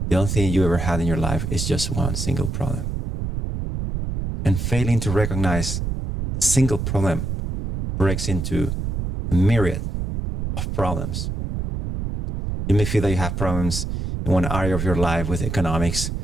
the only thing you ever had in your life is just one single problem. And failing to recognize the single problem breaks into a myriad of problems. You may feel that you have problems in one area of your life with economics.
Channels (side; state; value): right; noise; rumble, 3 dB below the sound